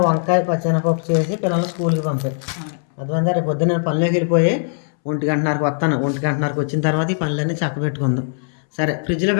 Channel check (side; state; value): right; silent; 66 dB below the other